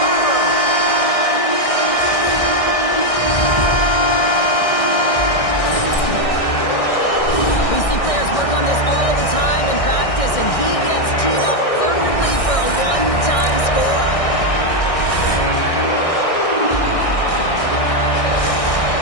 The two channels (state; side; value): late; right; 1.6 ms